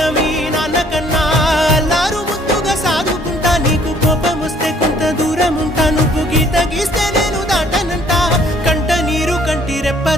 మీ నాన్న కన్నా అల్లారు ముద్దుగా సాదుకుంటా నీకు కోపం వస్తే కొంత దూరం ఉంటా నువ్వు గీత గీస్తే నేను దాటనంట కంట నీరు కంటి రెప్ప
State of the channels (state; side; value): normal; both; correlation 0.60